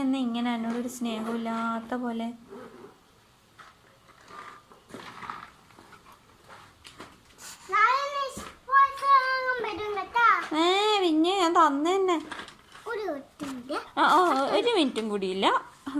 എന്നാ ഇങ്ങനെ എന്നോടൊരു സ്നേഹമില്ലാത്ത പോലെ? പിന്നെ ഞാൻ തന്നെ. ഒരു മിനിറ്റും കൂടിയില്ല,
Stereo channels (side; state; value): both; identical; correlation 1.00